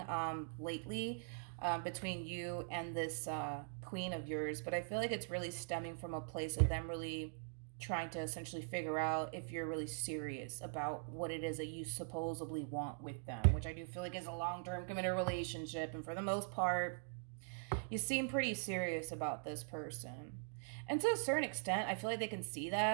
lately between you and this queen of yours. But I feel like it's really stemming from a place of them really trying to essentially figure out if you're really serious about what it is that you supposedly want with them, which I do feel like is a long-term committed relationship. And for the most part, you seem pretty serious about this person. And to a certain extent, I feel like they can see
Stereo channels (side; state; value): left; silent; digital silence